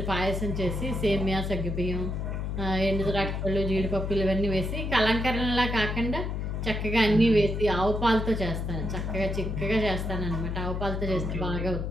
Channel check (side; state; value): left; noise; hum, 2 dB below the sound